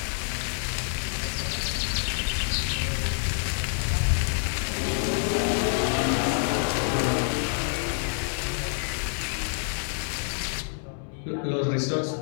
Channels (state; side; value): silent; right; 60 dB below the other